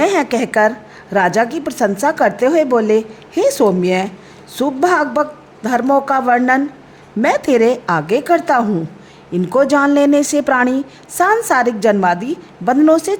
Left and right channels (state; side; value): identical; both; correlation 1.00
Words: है कहकर राजा की प्रशंसा करते हुए बोले, हे सौम्य, शुभ भागवत धर्मों का वर्णन मैं तेरे आगे करता हूँ। इनको जान लेने से प्राणी सांसारिक जन्मादि बंधनों से